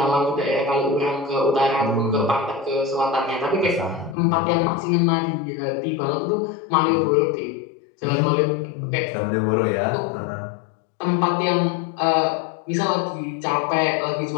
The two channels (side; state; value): right; drops out; at 4.2 s